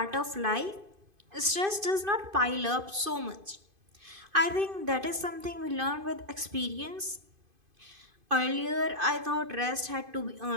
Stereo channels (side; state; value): left; late; 2.5 ms